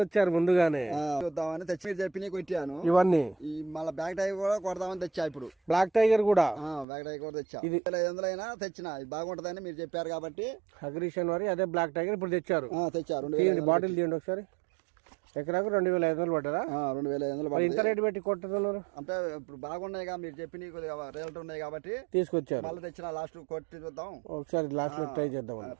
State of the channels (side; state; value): left; drops out; at 6.9 s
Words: ముందుగానే. చూద్దామని తెచ్చి చెప్పి కొట్టాను. ఇవన్నీ మళ్ళీ బ్లాక్ టైగర్ కూడా కొడదామని తెచ్చా. ఇప్పుడు బ్లాక్ టైగర్ కూడా బ్లాక్ టైగర్ కూడా తెచ్చా. ఇది 500 అయినా తెచ్చిన, ఇది బాగుంటదని మీరు చెప్పారు కాబట్టి అగ్రిషన్ వారి అదే బ్లాక్ టైగర్ ఇప్పుడు తెచ్చారు. తెచ్చారు. బాటిల్ తీయండి ఒకసారి. ఎకరాకు 2500 పడ్డారా? 2500. ఇంత రేటు పెట్టి కొట్టుతున్నారు అంటే ఇప్పుడు బాగున్నాయి, మీరు చెప్పి రేట్లు ఉన్నాయి కాబట్టి తీసుకొచ్చారు. మళ్ళీ తెచ్చిన లాస్ట్ కొట్టి చూద్దాం ఒకసారి లాస్ట్ లో ట్రై చేద్దాం.